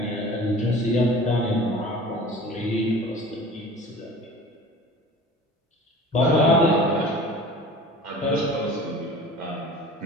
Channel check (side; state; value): both; normal; correlation 0.42